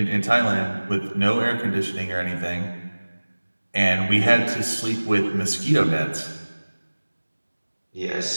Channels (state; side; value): inverted; both; correlation -1.00